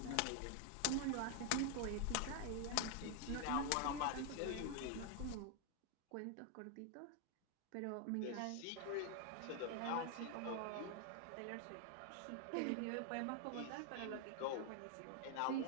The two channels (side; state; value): both; different; correlation 0.00